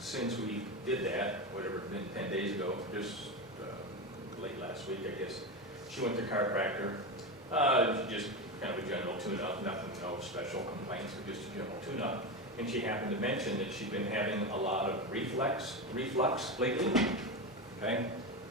we did that, whatever, it's been 10 days ago, just late last week, I guess, she went to chiropractor. Just kind of a general tune-up, nothing, no special complaints, but just a general tune-up. And she happened to mention that she'd been having a lot of reflux lately, okay?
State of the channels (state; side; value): normal; both; correlation 0.17